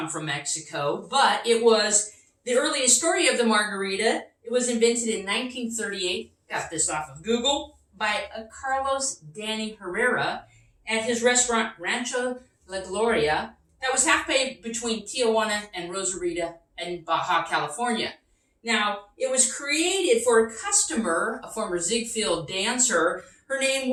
from Mexico, but it was the earliest story of the margarita. It was invented in 1938. Got this off of Google by Carlos Danny Herrera at his restaurant Rancho La Gloria that was halfway between Tijuana and Rosarita in Baja California. Now, it was created for a customer, a former Ziegfeld dancer. Her name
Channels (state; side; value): identical; both; correlation 1.00